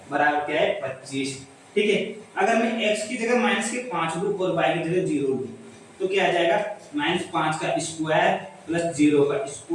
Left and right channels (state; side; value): identical; both; correlation 1.00